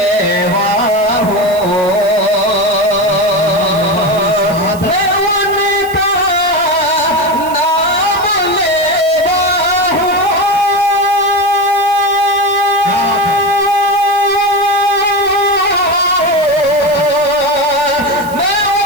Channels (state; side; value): noise; right; hiss, 17 dB below the sound